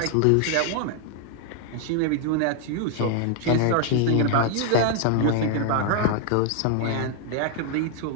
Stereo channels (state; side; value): different; both; correlation 0.00